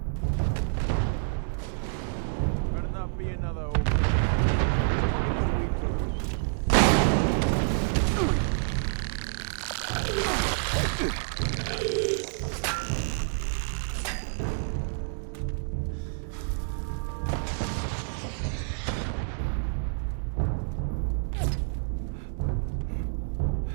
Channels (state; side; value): silent; left; digital silence